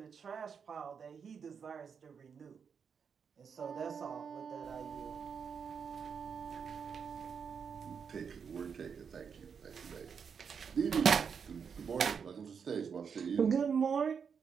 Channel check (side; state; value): left; quieter; 6.5 dB